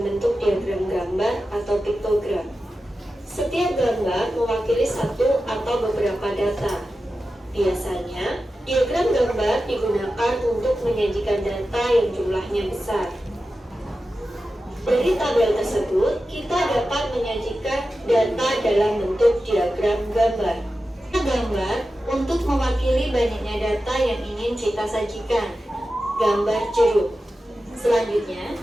bentuk diagram gambar atau piktogram. Setiap gambar mewakili satu atau beberapa data. Biasanya, diagram gambar digunakan untuk menyajikan data yang jumlahnya besar. Dari tabel tersebut, kita dapat menyajikan data dalam bentuk diagram gambar. Gambar untuk mewakili banyaknya data yang ingin kita sajikan. Gambar jeruk. Selanjutnya,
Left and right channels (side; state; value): both; normal; correlation 0.92